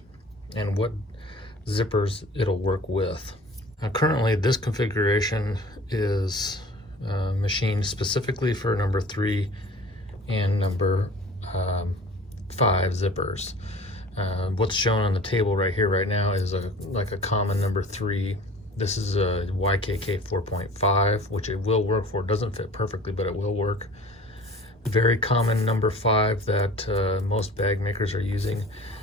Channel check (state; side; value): normal; both; correlation 0.44